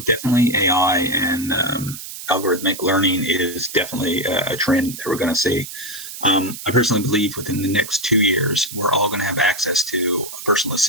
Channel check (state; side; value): noise; right; hiss, 11 dB below the sound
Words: definitely AI and algorithmic learning is definitely a trend that we're going to see. I personally believe within the next 2 years, we're all going to have access to a personal